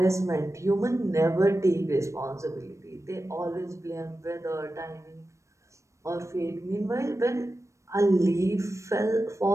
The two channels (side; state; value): left; late; 0.15 ms